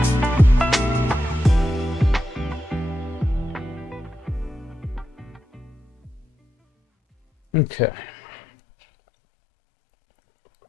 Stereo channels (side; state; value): both; normal; correlation 0.87